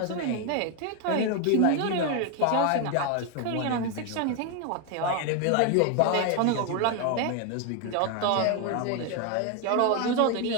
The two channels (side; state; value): both; different; correlation 0.01